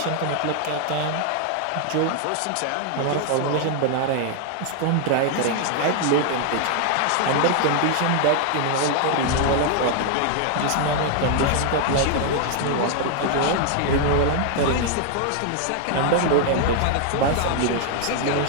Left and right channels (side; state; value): both; different; correlation 0.00